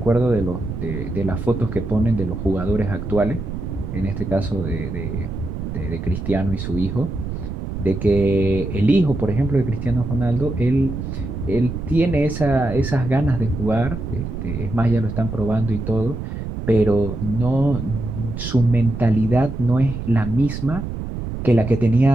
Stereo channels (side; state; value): right; noise; rumble, 6 dB below the sound